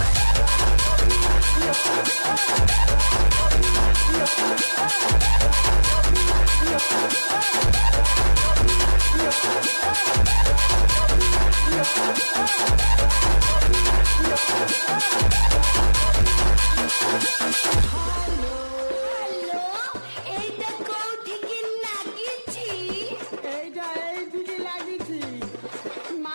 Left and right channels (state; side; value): inverted; both; correlation -1.00